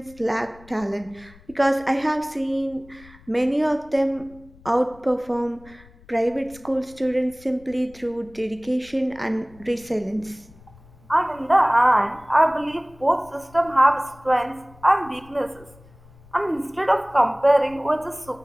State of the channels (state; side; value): noise; left; rumble, 24 dB below the sound